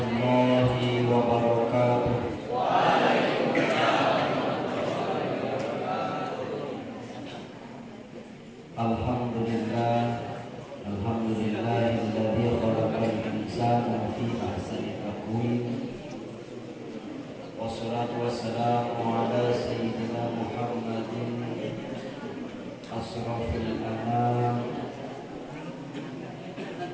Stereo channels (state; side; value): identical; both; correlation 1.00